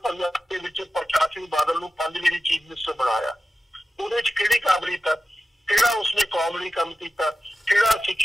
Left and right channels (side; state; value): both; normal; correlation 0.93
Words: ਪੰਜਾਬ ਦੇ ਵਿੱਚ ਪ੍ਰਕਾਸ਼ ਸਿੰਘ ਬਾਦਲ ਨੂੰ 5 ਵਾਰੀ ਚੀਫ ਮਿਨਿਸਟਰ ਬਣਾਇਆ, ਉਹਦੇ ਚ ਕਿਹੜੀ ਕਾਬਲੀਅਤ ਆ? ਕਿਹੜਾ ਉਸਨੇ ਕੌਮ ਲਈ ਕੰਮ ਕੀਤਾ, ਕਿਹੜਾ